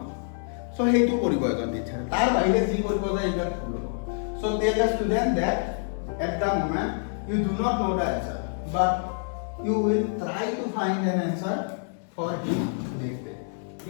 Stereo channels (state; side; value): silent; right; 60 dB below the other